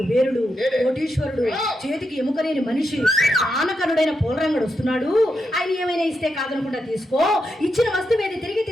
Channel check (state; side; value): normal; both; correlation 0.85